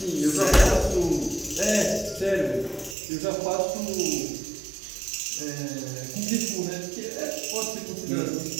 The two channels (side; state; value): left; drops out; at 3.0 s